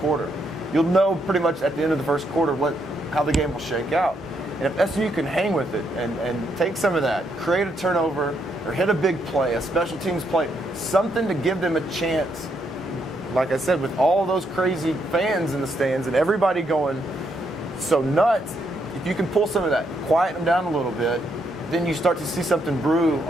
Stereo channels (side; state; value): both; normal; correlation 0.76